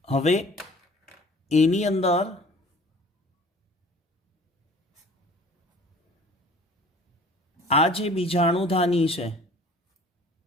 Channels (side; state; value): both; normal; correlation 0.48